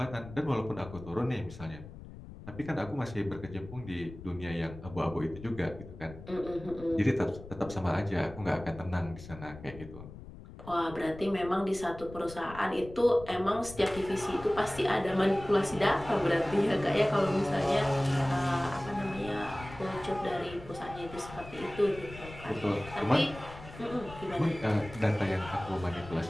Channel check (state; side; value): noise; left; rumble, 15 dB below the sound